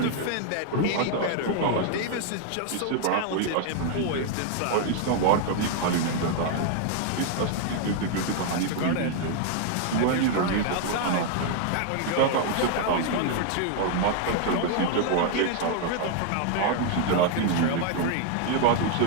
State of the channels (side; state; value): both; different; correlation 0.00